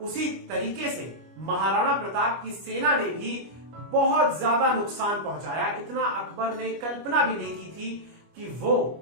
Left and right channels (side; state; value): left; late; 25 ms